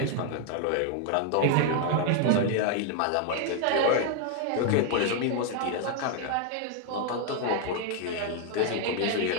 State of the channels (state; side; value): different; both; correlation 0.00